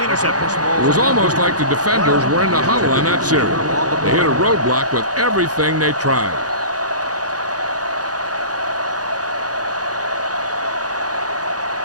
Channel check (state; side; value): late; left; 0.68 ms